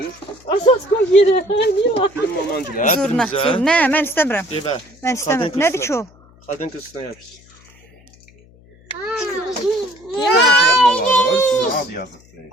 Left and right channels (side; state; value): left; noise; hum, 27 dB below the sound